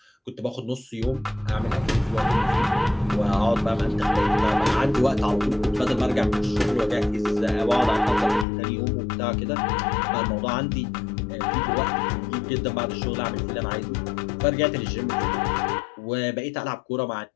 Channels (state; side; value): drops out; right; at 8.5 s